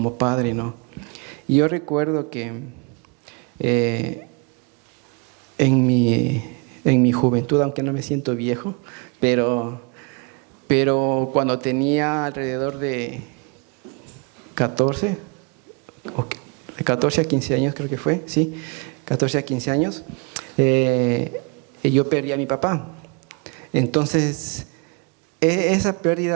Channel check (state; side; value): quieter; left; 32.7 dB